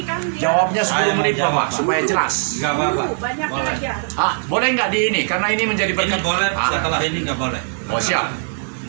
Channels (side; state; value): left; silent; digital silence